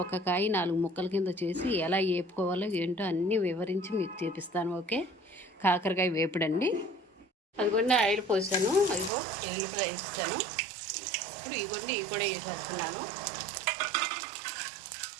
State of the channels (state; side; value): drops out; left; at 9.1 s